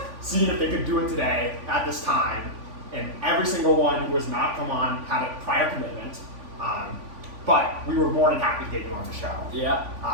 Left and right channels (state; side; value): late; left; 3.5 ms